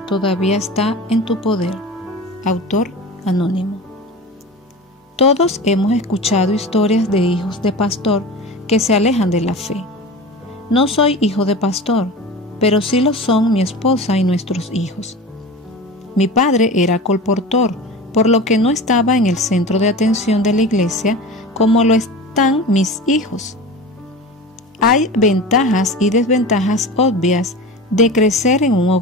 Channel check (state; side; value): normal; both; correlation 0.32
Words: todavía está en tu poder. Autor anónimo. Todos hemos escuchado historias de hijos de pastor que se alejan de la fe. No soy hijo de pastor, pero sí lo son mi esposa y nuestros hijos. Mi padre era colportor, por lo que no estaba en el centro de atención de la iglesia como lo están mis hijos. Hay ventajas y desventajas obvias de crecer en un